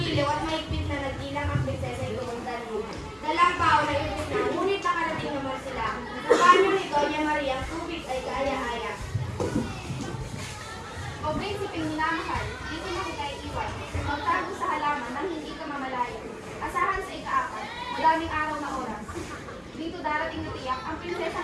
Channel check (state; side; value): identical; both; correlation 1.00